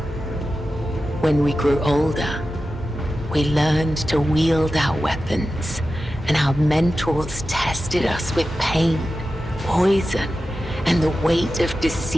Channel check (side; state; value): both; normal; correlation 0.93